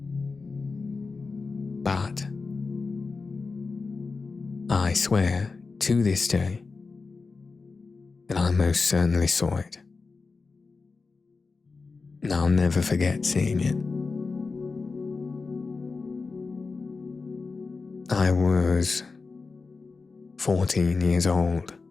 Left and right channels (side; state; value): right; quieter; 4.3 dB